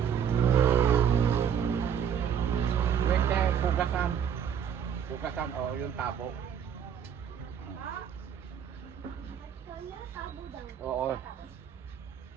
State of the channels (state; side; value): quieter; left; 8.4 dB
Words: Pwede, pugasan. Pugasan o yung tabo. Oo.